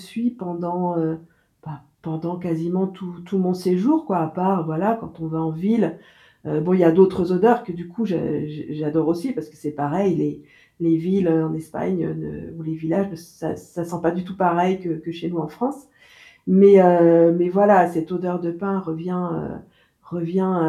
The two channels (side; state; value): both; identical; correlation 1.00